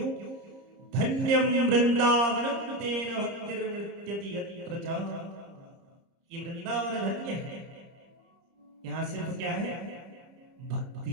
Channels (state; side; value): late; left; 30 ms